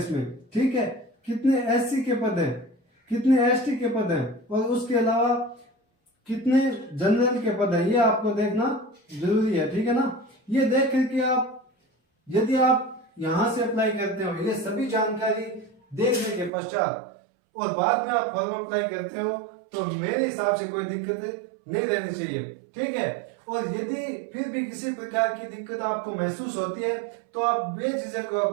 ठीक है। कितने एससी के पद है, कितने एसटी के पद है, और उसके अलावा कितने जनरल के पद है, ये आपको देखना जरूरी है। ठीक है ना। ये देख करके आप यदि आप यहां से अप्लाई करते हो, ये सभी जानकारी देखने के पश्चात और बाद में आप फॉर्म अप्लाई करते हो, तो मेरे हिसाब से कोई दिक्कत नहीं रहनी चाहिए। ठीक है। और यदि फिर भी किसी प्रकार की दिक्कत आपको महसूस होती है तो आप बेझिझक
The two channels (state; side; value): drops out; left; at 16.5 s